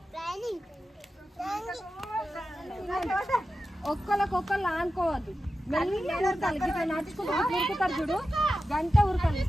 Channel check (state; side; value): normal; both; correlation 0.92